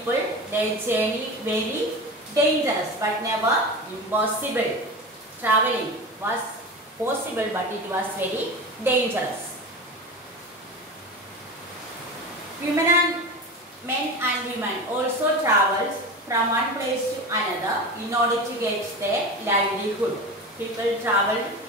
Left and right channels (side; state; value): both; normal; correlation 0.28